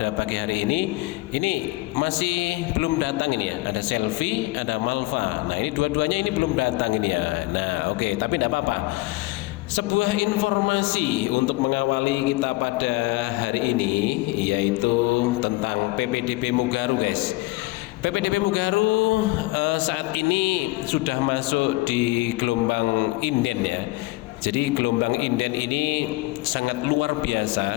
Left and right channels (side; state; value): right; quieter; 21.6 dB